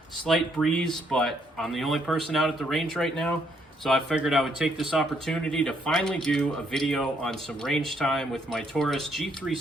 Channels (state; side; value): normal; both; correlation 0.72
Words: Slight breeze, but I'm the only person out at the range right now, so I figured I would take this opportunity to finally do a video on some range time with my Taurus